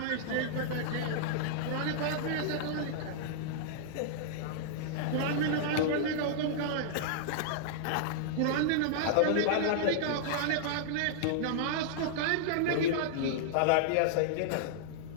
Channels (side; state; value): both; different; correlation -0.02